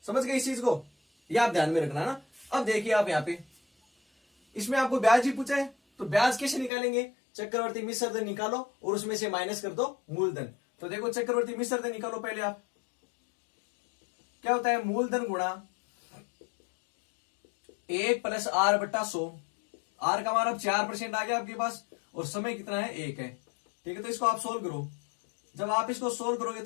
समझ गए इस चीज को, यह आप ध्यान में रखना ना। अब देखिए आप यहाँ पे इसमें आपको ब्याज ही पूछा है, तो ब्याज कैसे निकालेंगे, चक्रवर्ती मिश्र धन निकालो और उसमें से माइनस कर दो मूलधन। तो देखो चक्रवर्ती मिश्र धन निकालो पहले आप, क्या होता है, मूलधन गुणा 1 + r/100। आर का मान अब 4% आ गया आपके पास और समय कितना है, 1 है। ठीक है, तो इसको आप सोल्व करो। जब आप इसको सोल्व करोगे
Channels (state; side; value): drops out; right; at 6.7 s